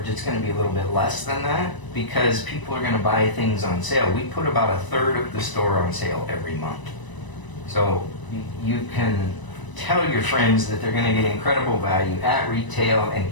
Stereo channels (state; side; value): late; right; 1.0 ms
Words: it's going to be a little bit less than that because people are going to buy things on sale. We put about a third of the store on sale every month. So you can tell your friends that they're going to get incredible value at retail and